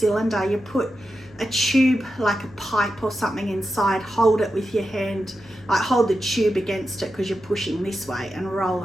you put a tube, like a pipe or something inside, hold it with your hand, like hold the tube against it because you're pushing this way and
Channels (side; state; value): left; noise; hum, 24 dB below the sound